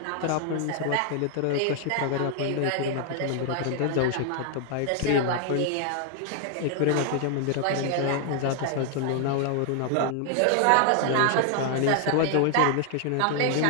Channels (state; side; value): different; both; correlation 0.00